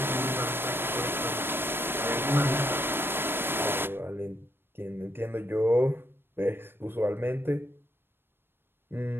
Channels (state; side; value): late; left; 0.10 ms